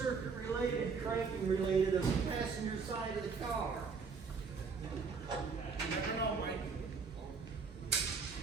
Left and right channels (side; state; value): left; quieter; 5.2 dB